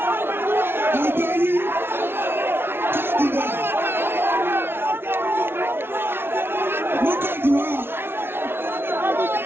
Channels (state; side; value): late; left; 0.11 ms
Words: ọjọ́ yìí, káàdì náà, mo káàdì wá.